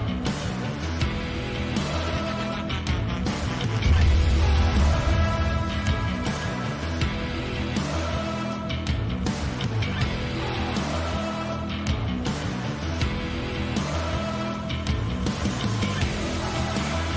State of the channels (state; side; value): identical; both; correlation 1.00